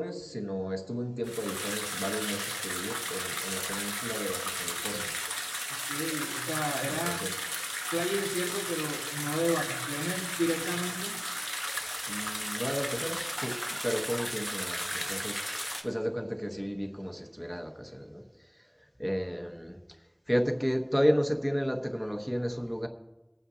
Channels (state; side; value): identical; both; correlation 1.00